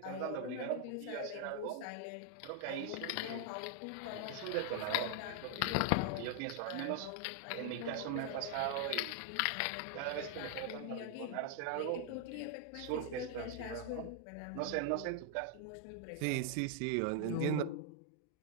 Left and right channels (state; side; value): different; both; correlation 0.00